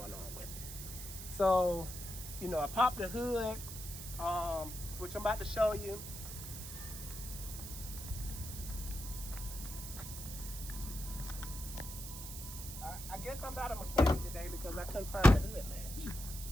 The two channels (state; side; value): noise; right; hiss, 9 dB below the sound